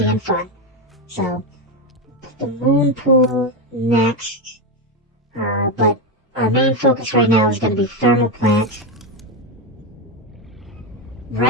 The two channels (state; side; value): normal; both; correlation 0.11